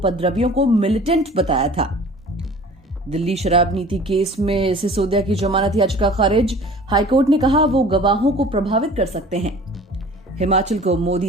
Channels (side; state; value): both; normal; correlation 0.45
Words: को मिलिटेंट बताया था। दिल्ली शराब नीति केस में सिसोदिया की जमानत याचिका खारिज। हाईकोर्ट ने कहा वो गवाहों को प्रभावित कर सकते हैं। हिमाचल को